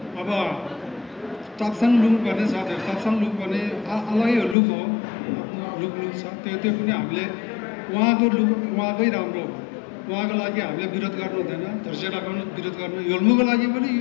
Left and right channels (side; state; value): right; drops out; at 4.5 s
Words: अब टाप्साङ लुक भन्ने छ। त्यो टाप्साङ लुक भने अलगै लुक हो। लुक छ त्यो पनि हामीले उहाँको लुक उहाँकै राम्रो हो। उहाँको लागि हामीले विरोध गर्नु हुँदैन। धोर्चेटाको विरोध गर्नु योल्मोको लागि पनि